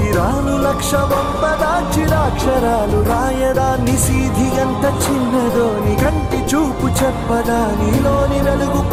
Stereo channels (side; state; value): both; identical; correlation 1.00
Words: లక్ష వంపదా, చిరాక్షరాలు రాయదా. నిశీధి ఎంత చిన్నదో నీ కంటి చూపు చెప్పదా. నీలోని వెలుగు